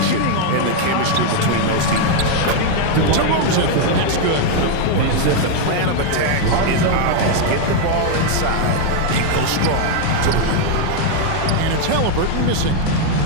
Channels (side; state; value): both; different; correlation 0.01